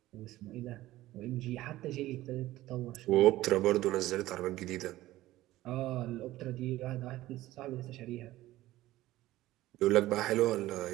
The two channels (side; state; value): left; quieter; 16.2 dB